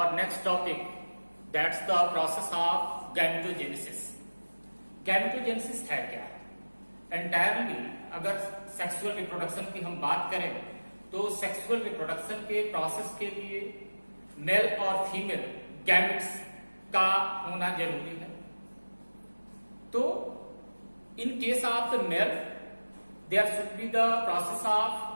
next topic, that's the process of gametogenesis. Gametogenesis है क्या? Entirely अगर sexual reproduction की हम बात करें तो सेक्सुअल रिप्रोडक्शन के प्रोसेस के लिए मेल और फीमेल गैमेट्स का होना जरूरी है। तो in case of the male there should be the process of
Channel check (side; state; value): both; inverted; correlation -1.00